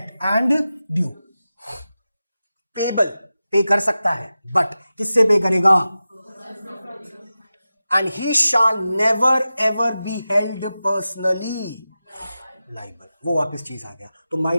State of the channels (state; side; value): inverted; both; correlation -0.94